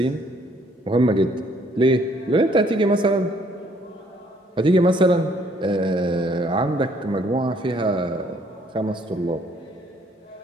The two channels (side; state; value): both; normal; correlation 0.64